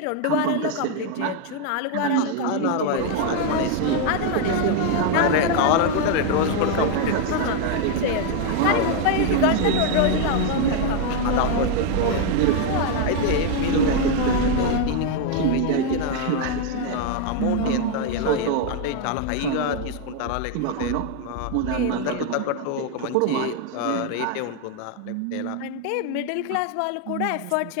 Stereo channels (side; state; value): both; different; correlation 0.01